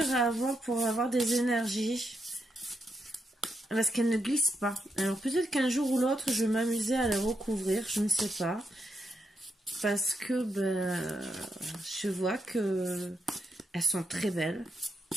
à avoir pour avoir des énergies. Parce qu'elles ne glissent pas. Alors peut-être qu'un jour ou l'autre, je vais m'amuser à les recouvrir. Je ne sais pas. Parce que ben, je vois que elles sont très belles.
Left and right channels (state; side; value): normal; both; correlation 0.82